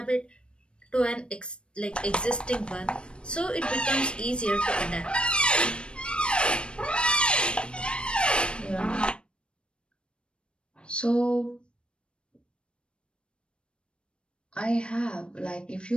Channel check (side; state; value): right; late; 0.056 ms